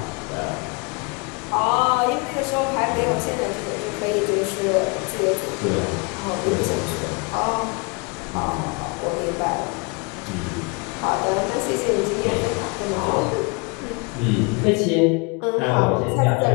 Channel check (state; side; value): quieter; right; 30.7 dB